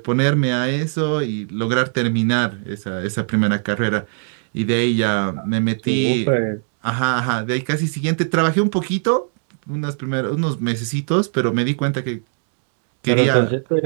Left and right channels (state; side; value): silent; left; digital silence